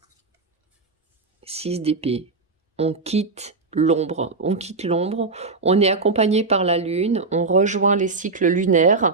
6 d'épée. On quitte l'ombre, on est accompagné par la lune, on rejoint les cycles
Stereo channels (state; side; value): quieter; left; 3.9 dB